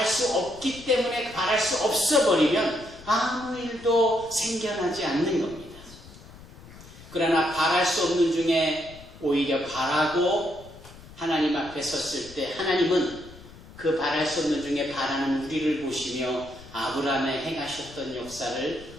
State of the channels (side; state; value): left; noise; rumble, 19 dB below the sound